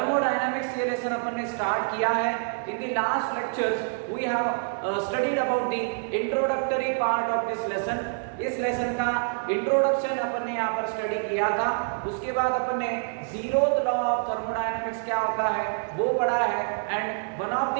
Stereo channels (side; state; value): left; silent; digital silence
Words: ये lesson अपन ने start किया है. In the last lectures we have studied about the introductory part of this lesson. इस लेसन का इंट्रोडक्शन अपन ने यहाँ पर स्टडी किया था. उसके बाद अपन ने जीरोथ लॉ ऑफ थर्मोडायनेमिक्स क्या होता है वो पढ़ा है. And one of the